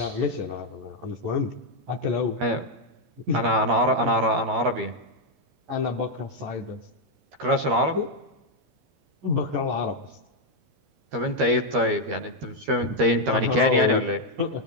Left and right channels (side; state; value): left; late; 13 ms